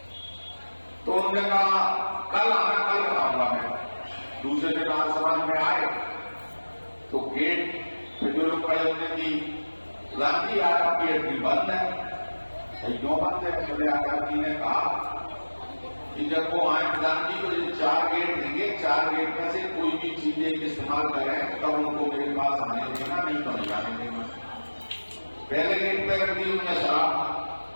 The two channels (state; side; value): inverted; both; correlation -1.00